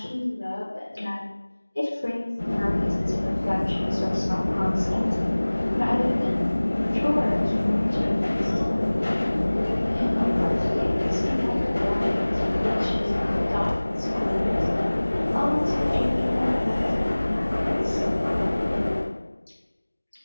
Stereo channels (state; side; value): inverted; both; correlation -1.00